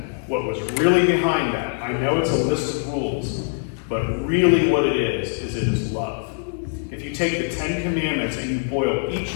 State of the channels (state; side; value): silent; right; 64 dB below the other